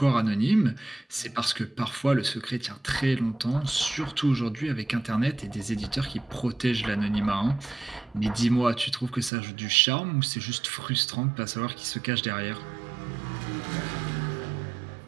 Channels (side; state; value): left; drops out; at 9.3 s